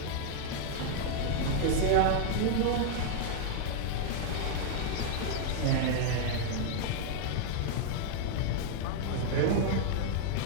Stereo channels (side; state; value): both; different; correlation -0.01